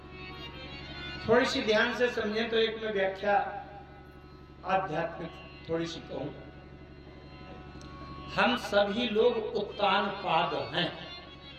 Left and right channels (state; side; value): identical; both; correlation 1.00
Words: थोड़ी सी ध्यान से समझें तो एक में व्याख्या आध्यात्मिक थोड़ी सी कहूं। हम सभी लोग उत्तान पाद हैं।